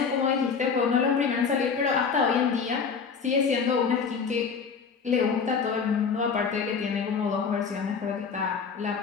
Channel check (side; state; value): right; quieter; 5.7 dB